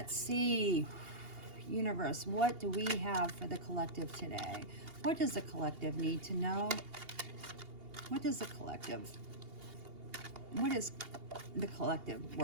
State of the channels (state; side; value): late; left; 2.8 ms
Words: see, universe, what do we have for the collective today? What does the collective need to know? What is the collective